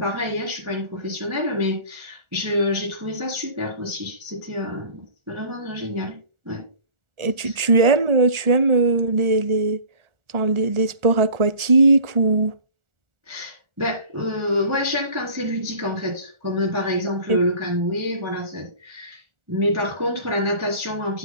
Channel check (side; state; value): left; late; 1.4 ms